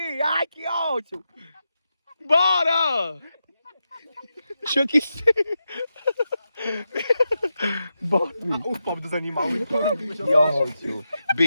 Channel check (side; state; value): both; inverted; correlation -0.88